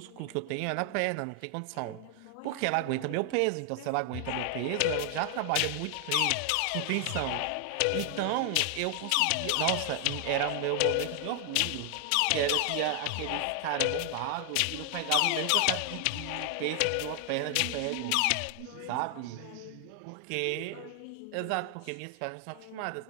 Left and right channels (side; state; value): both; different; correlation 0.00